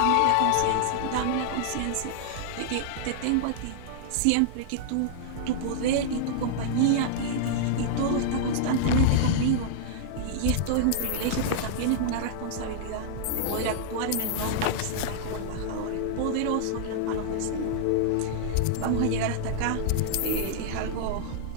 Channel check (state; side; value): different; both; correlation -0.01